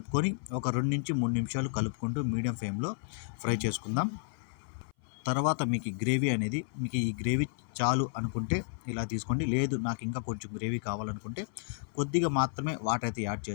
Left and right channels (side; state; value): right; silent; 56 dB below the other